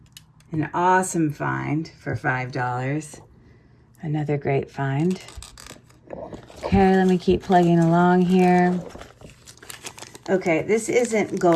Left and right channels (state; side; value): identical; both; correlation 1.00